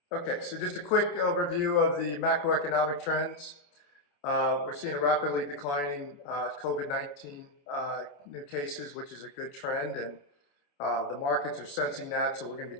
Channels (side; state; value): right; late; 28 ms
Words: Okay, so just a quick overview of the macroeconomic trends. We're seeing a rapidly declining COVID-19 new cases, which is a good trend, and the markets are sensing that. So we're going to